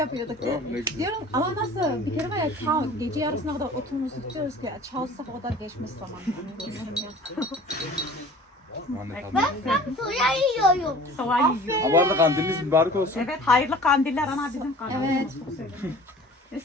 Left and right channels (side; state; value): both; normal; correlation 0.45